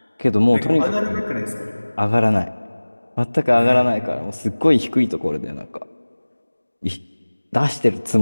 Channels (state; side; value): inverted; both; correlation -1.00